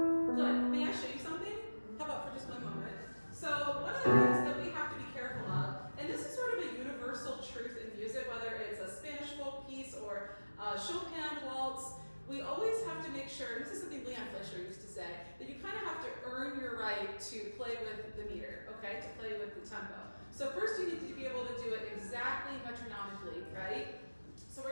Good. May I show you something? How about for just one moment? So one of the things that we have to be careful of, and this is sort of a universal truth in music, whether it's a Spanish folk piece or a Chopin waltz, we always have to make sure, and this is something Leon Fleischer used to say, that you kind of have to earn your right to play with the meter, okay, to play with the tempo. So first you need to be able to do it exactly metronomically, right? So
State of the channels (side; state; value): both; inverted; correlation -1.00